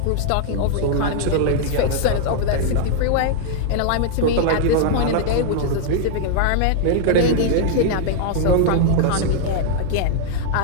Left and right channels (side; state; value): both; different; correlation 0.00